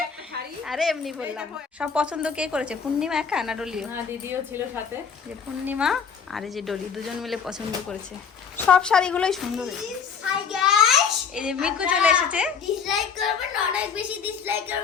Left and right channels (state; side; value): quieter; right; 6.4 dB